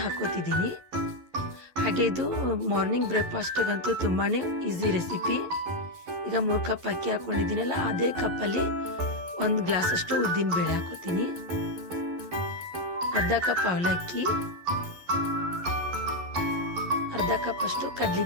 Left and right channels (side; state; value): left; late; 11 ms